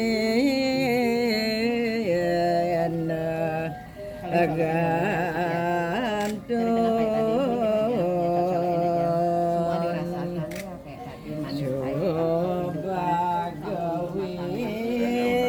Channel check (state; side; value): identical; both; correlation 1.00